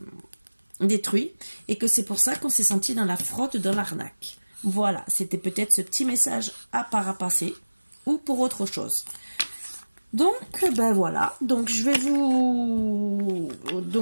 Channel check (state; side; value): inverted; both; correlation -1.00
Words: détruits, et que c'est pour ça qu'on s'est senti dans la fraude, dans l'arnaque. Voilà, c'était peut-être ce petit message à parapasser, ou pour autre chose. Donc, voilà. Donc,